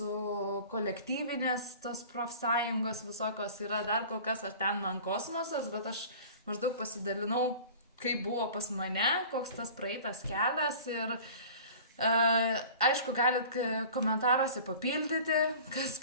kolektyvinės tos profsąjungos visokios yra, dar kol kas aš ten man kosmosas, bet aš maždaug pasidalinau, kaip buvo pas mane, koks tas praeitas kelias ir aišku, galit komentaruose papildyti, kas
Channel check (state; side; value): inverted; both; correlation -0.42